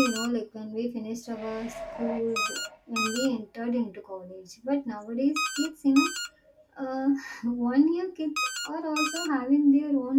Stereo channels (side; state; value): both; identical; correlation 1.00